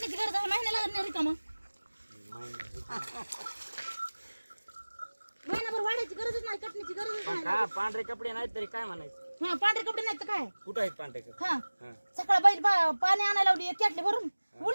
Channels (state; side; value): inverted; both; correlation -1.00